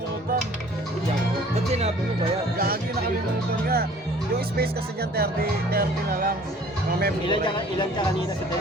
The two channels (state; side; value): normal; both; correlation 0.52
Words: Ba't sinabi mo ba yan? Gagi, nakalimutan nga. Yung space kasi dyan, 30 na lang. Mga memory. Ilan ka kanina sa